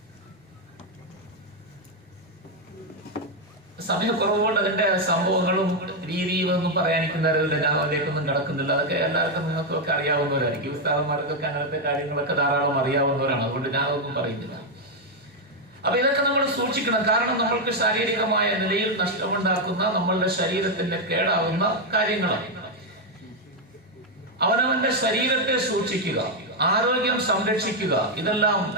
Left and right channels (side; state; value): both; normal; correlation 0.02